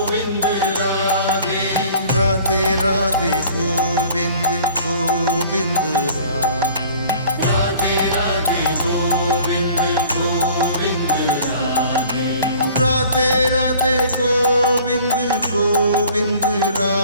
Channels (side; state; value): both; inverted; correlation -0.50